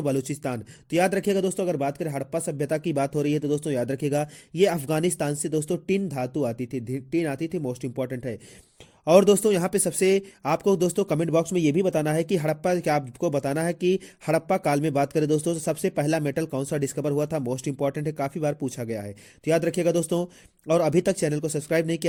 बलूचिस्तान। तो याद रखिएगा दोस्तों, अगर बात करें हड़प्पा सभ्यता की बात हो रही है तो दोस्तों याद रखिएगा ये अफगानिस्तान से दोस्तों टिन धातु आती थी, टिन आती थी, मोस्ट इंपॉर्टेंट है। और दोस्तों यहाँ पे सबसे आपको दोस्तों कमेंट बॉक्स में ये भी बताना है कि हड़प्पा, क्या आपको बताना है कि हड़प्पा काल में बात करें दोस्तों तो सबसे पहला मेटल कौन सा डिस्कवर हुआ था, मोस्ट इंपॉर्टेंट है, काफी बार पूछा गया है, तो याद रखिएगा दोस्तों। और अभी तक चैनल को सब्सक्राइब नहीं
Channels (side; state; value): both; identical; correlation 1.00